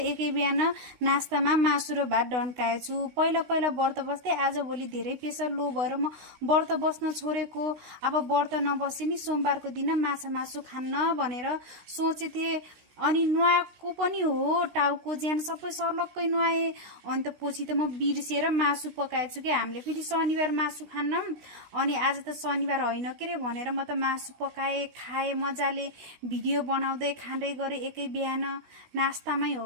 एकै बिहान नास्तामा मासु र भात डन्काएछु। पहिला पहिला व्रत बस्दै आजभोलि धेरै प्रेसर लो भएर म व्रत बस्न छोडेको। अब व्रत नबसे नि सोमबारको दिन माछा मासु खान्न भनेर सोचेथे। अनि नुहाएको पनि हो, टाउको ज्यान सबै सर्लक्कै नुहाएँ। अनि त पछि त म बिर्सेर मासु पकाएछु कि हामीले फेरि शनिबार मासु खान्न। अनि आज त शनिबार होइन के रे भनेर म त मासु पकाएँ, खाएँ मजाले, भिडियो बनाउँदै खाँदै गरेँ एकै बिहान। नास्तामै हो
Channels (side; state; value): left; late; 16 ms